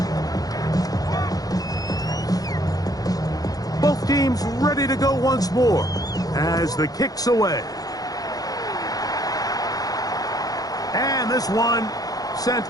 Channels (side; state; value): right; late; 0.18 ms